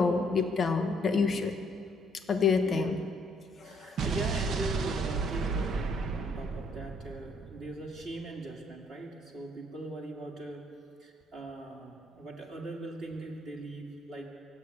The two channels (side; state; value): both; normal; correlation 0.67